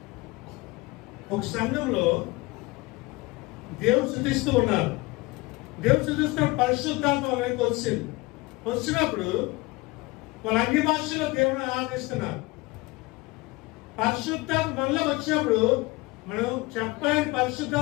ఒక సంఘంలో దేవుడు స్తుతిస్తూ ఉన్నారు. దేవుడు స్తుతిస్తున్న పరిశుద్ధాత్మ వాళ్ళకి వచ్చింది. వచ్చినప్పుడు వాళ్ళ అన్ని భాషల్లో దేవుని ఆరాధిస్తున్నారు. పరిశుద్ధాత్మ మనలో వచ్చినప్పుడు మనం చెప్పలేని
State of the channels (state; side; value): quieter; right; 22.8 dB